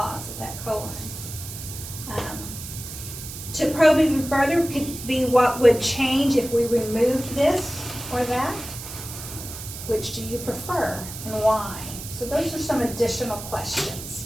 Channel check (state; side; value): noise; right; hiss, 10 dB below the sound